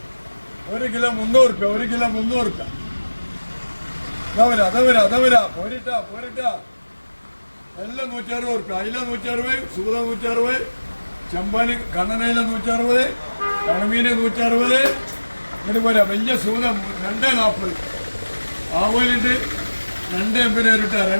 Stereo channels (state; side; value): inverted; both; correlation -1.00